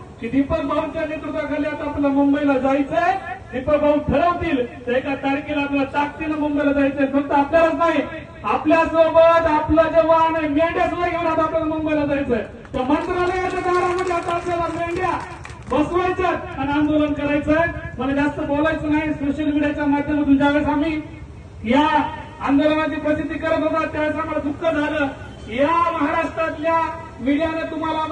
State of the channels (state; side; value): identical; both; correlation 1.00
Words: की दीपक भाऊंच्या नेतृत्वाखाली आता आपल्याला मुंबईला जायचंय. दीपक भाऊ ठरवतील तर एका तारखेला आपल्याला ताकदीनं मुंबईला जायचंय. फक्त आपल्यालाच नाही, आपल्यासोबत आपलं जे वाहन आहे मेंढ्या सुद्धा घेऊन आता आपल्याला मुंबईला जायचंय. तर मंत्रालयाच्या दारामध्ये आता आपल्याला मेंढ्या बसवायच्या आणि आंदोलन करायचंय. मला जास्त बोलायचं नाही. सोशल मीडियाच्या माध्यमातून ज्यावेळेस आम्ही या आंदोलनाची प्रसिद्धी करत होता त्यावेळेस आम्हाला दुःख झालं. या महाराष्ट्रातल्या मीडियाने तुम्हाला